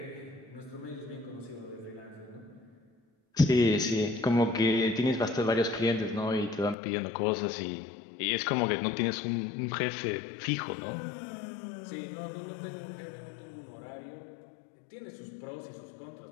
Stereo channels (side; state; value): right; drops out; at 6.8 s